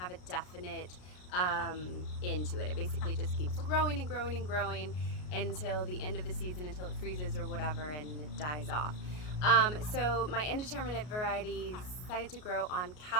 a definite end to it. It basically just keeps growing and growing and growing until the end of the season, until it freezes or whatever and it dies off. So my indeterminate varieties decided to grow on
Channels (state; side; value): late; right; 33 ms